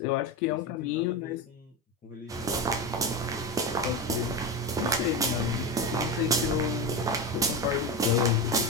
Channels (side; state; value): both; normal; correlation 0.18